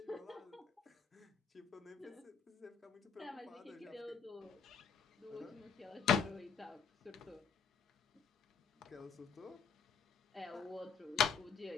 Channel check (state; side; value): quieter; right; 7.0 dB